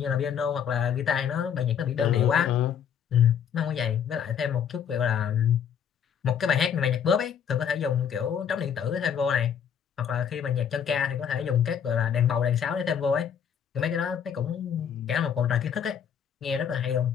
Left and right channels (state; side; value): quieter; right; 8.0 dB